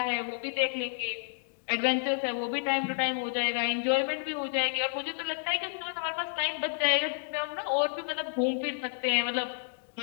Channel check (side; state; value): right; silent; digital silence